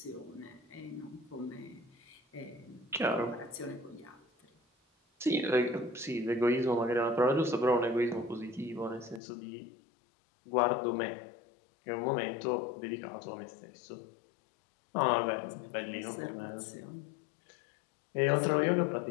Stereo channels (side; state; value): right; drops out; at 9.2 s